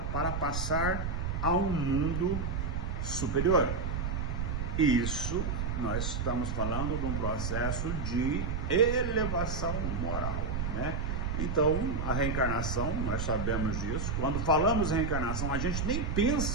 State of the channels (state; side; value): noise; right; rumble, 1 dB below the sound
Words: para passar a um mundo superior. Isso nós estamos falando de um processo de elevação moral, Então, a reencarnação, nós sabemos disso. Quando falamos em reencarnação, a gente nem